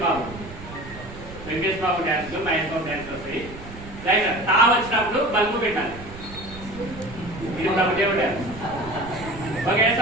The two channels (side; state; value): right; noise; rumble, 14 dB below the sound